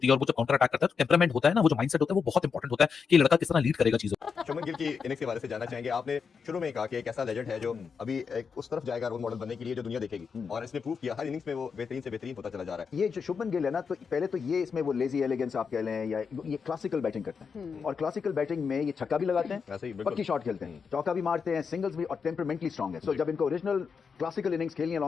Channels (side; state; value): right; quieter; 5.9 dB